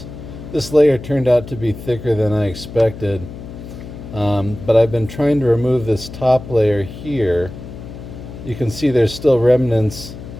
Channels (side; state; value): left; noise; hum, 13 dB below the sound